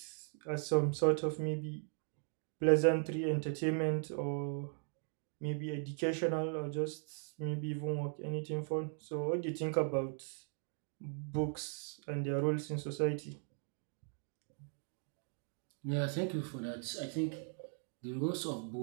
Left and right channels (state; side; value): silent; left; 52 dB below the other